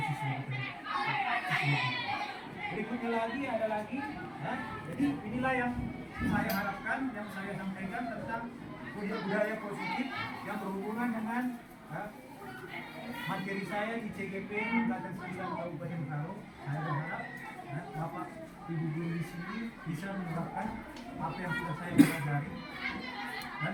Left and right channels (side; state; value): both; identical; correlation 1.00